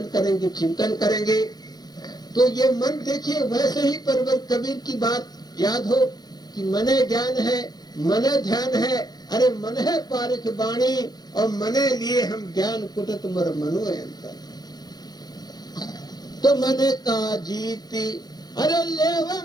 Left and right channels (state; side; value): late; right; 0.19 ms